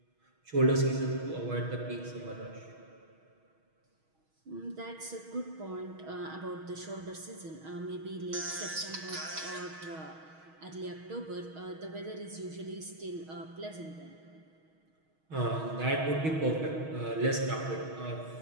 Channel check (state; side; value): late; left; 6.3 ms